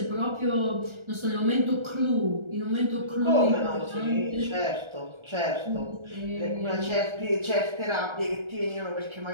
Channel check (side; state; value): left; late; 1.3 ms